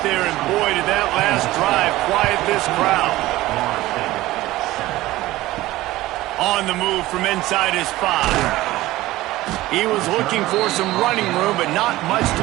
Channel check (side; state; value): left; quieter; 17.2 dB